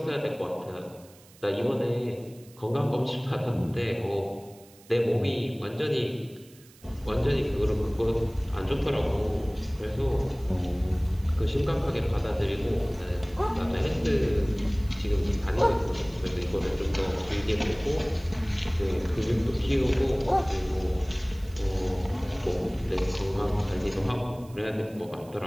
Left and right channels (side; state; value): right; noise; hiss, 25 dB below the sound